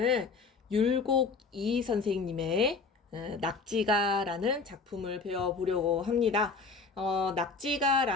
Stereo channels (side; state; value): right; quieter; 4.4 dB